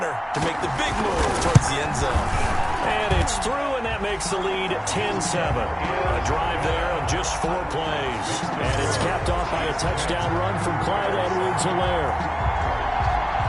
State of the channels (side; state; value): both; identical; correlation 1.00